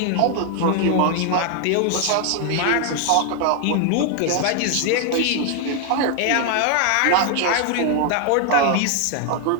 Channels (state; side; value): different; both; correlation 0.00